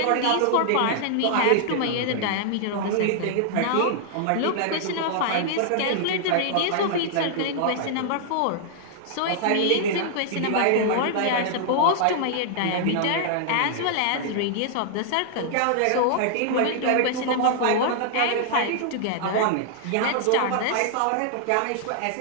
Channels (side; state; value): both; different; correlation -0.01